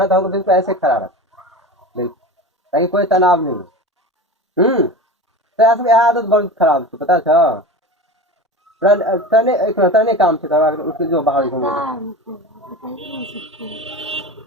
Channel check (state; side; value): normal; both; correlation 0.31